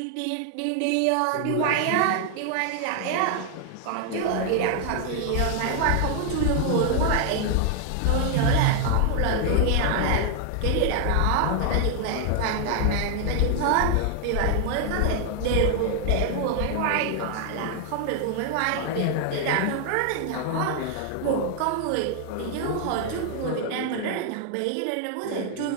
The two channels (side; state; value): both; different; correlation 0.00